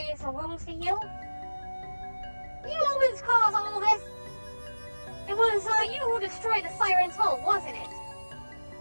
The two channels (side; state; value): both; inverted; correlation -1.00